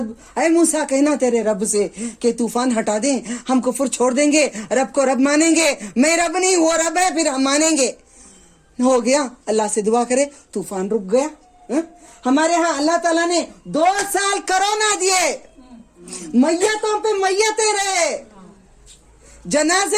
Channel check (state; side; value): identical; both; correlation 1.00